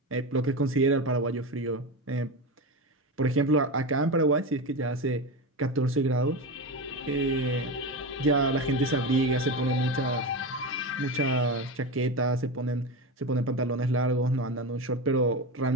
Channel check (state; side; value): normal; both; correlation 0.21